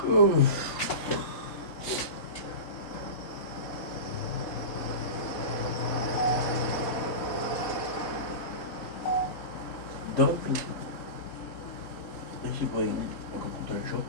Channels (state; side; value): late; right; 3.7 ms